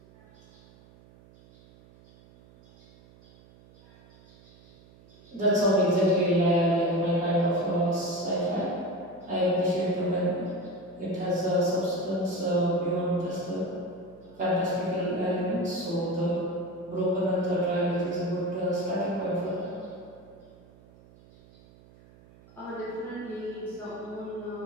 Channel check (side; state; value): right; noise; hum, 25 dB below the sound